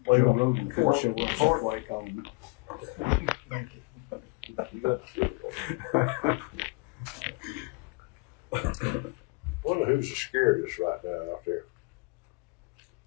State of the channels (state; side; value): quieter; right; 27.9 dB